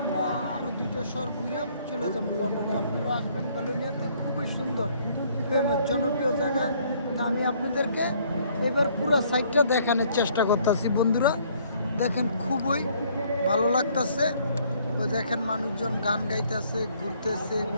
আরও 2টা শহর ঘুরে চলে যাবো লন্ডনে। আপনারা আসবেন বেলোনিয়াতে, খুবই সুন্দর ফেমাস জনপ্রিয় জায়গা। তা আমি আপনাদেরকে এবার পুরো সাইডটা দেখানোর চেষ্টা করতেছি বন্ধুরা। দেখেন খুবই ভালো লাগতেছে। ওই দেখেন মানুষজন গান গাইতেছে, ঘুরতেছে,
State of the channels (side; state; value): both; inverted; correlation -0.63